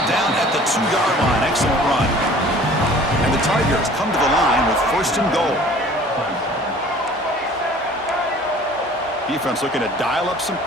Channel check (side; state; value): both; normal; correlation 0.49